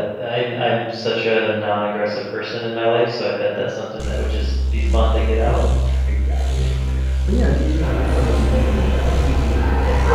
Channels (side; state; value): both; identical; correlation 1.00